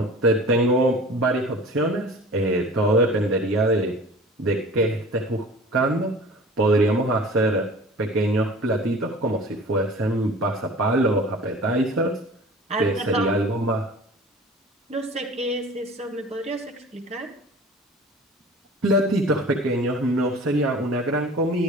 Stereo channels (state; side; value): normal; both; correlation 0.42